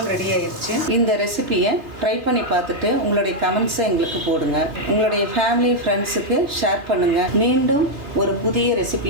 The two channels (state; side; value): late; left; 3.5 ms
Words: ரெடி ஆயிடுச்சு. இந்த ரெசிபியை ட்ரை பண்ணி பார்த்துட்டு உங்களுடைய கமெண்ட்ஸை எங்களுக்கு போடுங்க. உங்களுடைய ஃபேமிலி ஃப்ரெண்ட்ஸுக்கு ஷேர் பண்ணுங்கள். மீண்டும் ஒரு புதிய